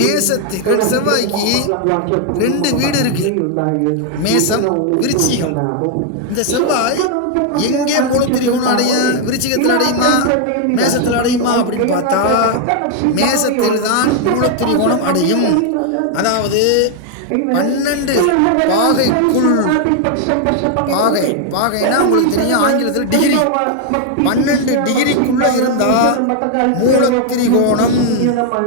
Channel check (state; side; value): different; both; correlation 0.00